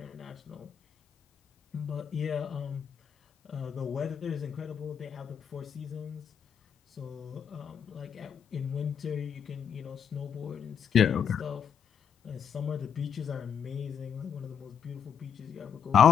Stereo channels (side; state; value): right; quieter; 7.8 dB